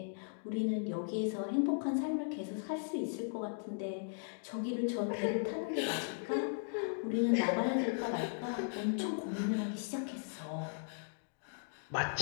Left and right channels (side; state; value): right; silent; digital silence